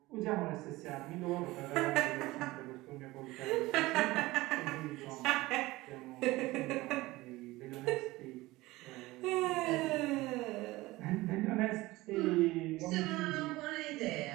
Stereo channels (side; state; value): left; quieter; 19.6 dB